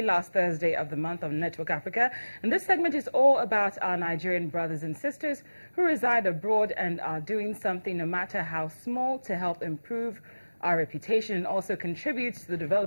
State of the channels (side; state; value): both; inverted; correlation -1.00